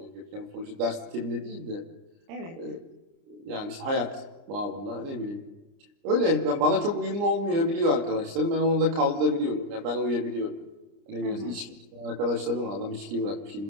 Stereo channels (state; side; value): late; left; 29 ms